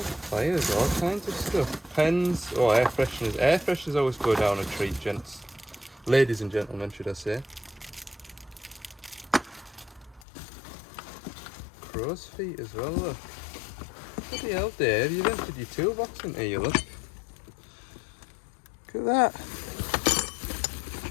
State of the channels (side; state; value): right; drops out; at 10.2 s